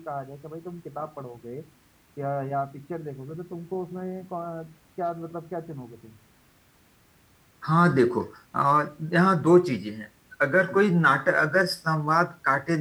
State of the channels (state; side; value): identical; both; correlation 1.00